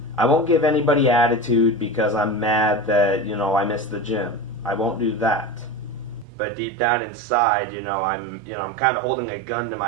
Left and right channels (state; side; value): drops out; left; at 6.2 s